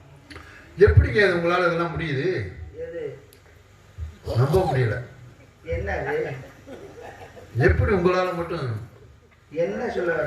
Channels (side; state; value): both; identical; correlation 1.00